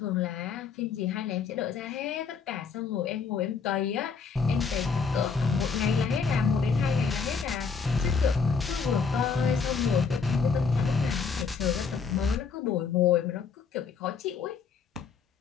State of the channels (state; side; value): quieter; right; 5.5 dB